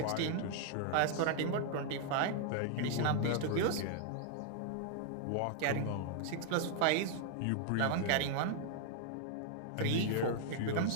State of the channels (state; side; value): different; both; correlation -0.01